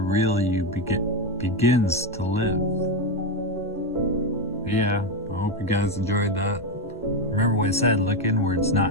real you begins to live. Yeah, I hope you guys enjoyed that. Remember what I said, look inwards,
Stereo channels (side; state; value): both; normal; correlation 0.10